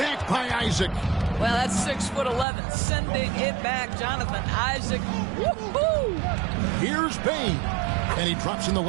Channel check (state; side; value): drops out; left; at 2.5 s